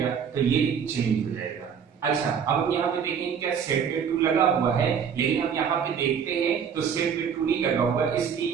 तो ये चेंज हो जाएगा। अच्छा, अब हम यहाँ पे देखेंगे क्या सेट पे टू लगा हुआ है, लेकिन हम यहाँ पे देखते हैं तो सेट पे टू नहीं लगा हुआ, इसलिए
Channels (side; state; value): left; quieter; 7.3 dB